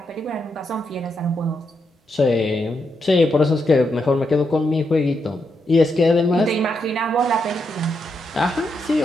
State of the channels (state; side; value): normal; both; correlation 0.82